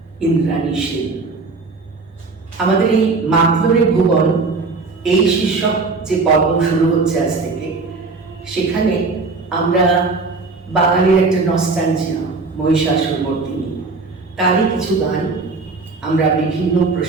ইন্দ্রাণী সেন। আমাদের এই মাধ্যমিক ভুবন এই শীর্ষক যে পর্ব শুরু হচ্ছে আজ থেকে, সেখানে আমরা বাঙালির একটা নস্টালজিয়া মহিষাসুরমর্দিনী, তারই কিছু গান আমরা বিভিন্ন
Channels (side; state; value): left; quieter; 4.0 dB